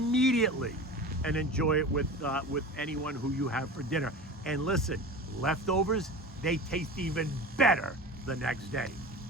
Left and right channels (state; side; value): normal; both; correlation 0.32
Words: and enjoy it with anyone who you have for dinner. And listen, leftovers, they taste even better the next day.